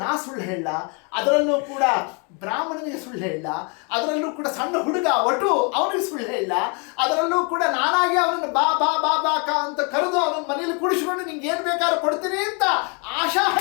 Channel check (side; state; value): right; quieter; 35.2 dB